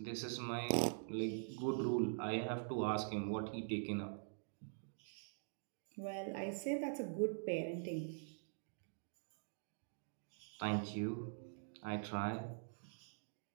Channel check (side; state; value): left; silent; digital silence